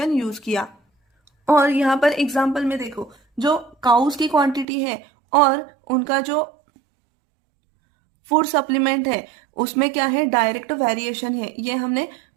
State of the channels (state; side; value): drops out; left; at 4.7 s